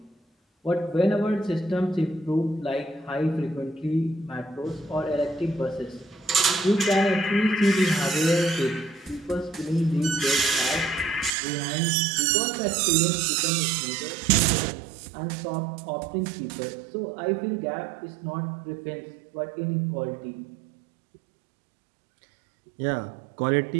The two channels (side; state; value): left; drops out; at 11.3 s